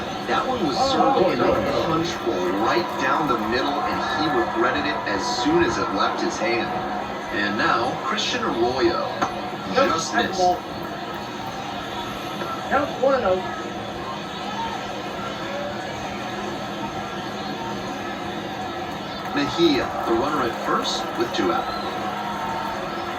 That one was served in a punch bowl right down the middle, and he regretted it as soon as it left his hand. And now, Christian Arroyo just missed. Counts 1-0. Mejia, the runner at first with 2 out.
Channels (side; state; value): both; identical; correlation 1.00